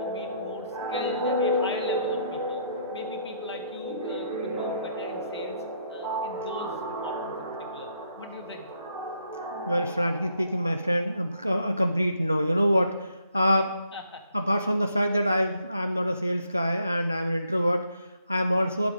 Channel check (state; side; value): inverted; both; correlation -0.73